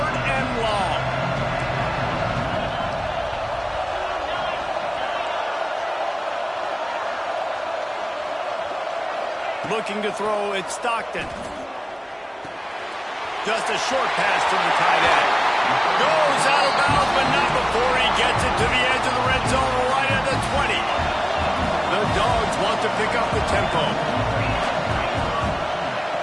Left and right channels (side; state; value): both; identical; correlation 1.00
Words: and long. Looking to throw, it's Stockton. Just a short pass to the tight end. Goes out of bounds, but not before he gets it to the edge of the red zone right at the 20. The Dogs want to pick up the tempo.